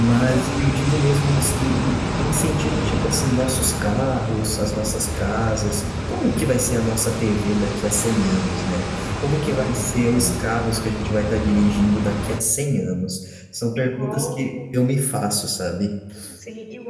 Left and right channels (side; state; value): both; identical; correlation 1.00